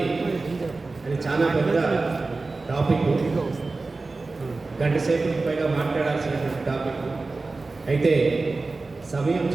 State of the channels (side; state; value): left; quieter; 3.6 dB